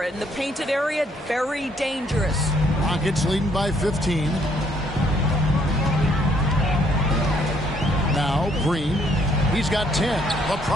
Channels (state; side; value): normal; both; correlation 0.67